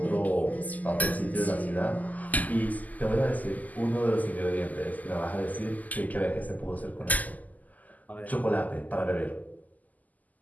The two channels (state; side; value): late; right; 0.079 ms